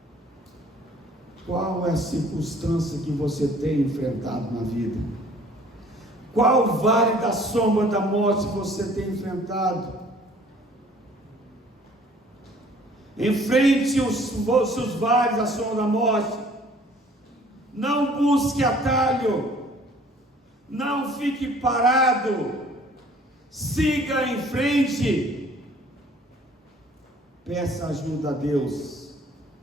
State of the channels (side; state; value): both; normal; correlation 0.55